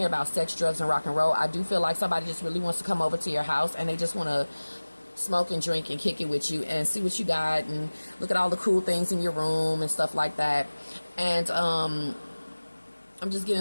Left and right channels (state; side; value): inverted; both; correlation -1.00